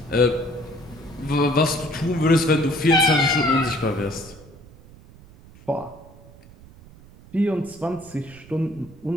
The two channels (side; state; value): right; noise; rumble, 22 dB below the sound